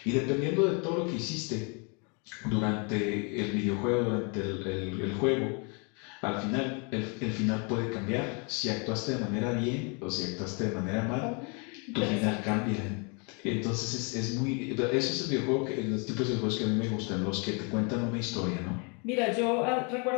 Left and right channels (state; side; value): quieter; right; 34.5 dB